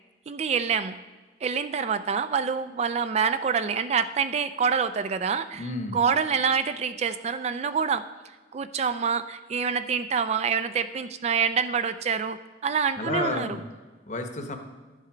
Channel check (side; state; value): left; quieter; 5.4 dB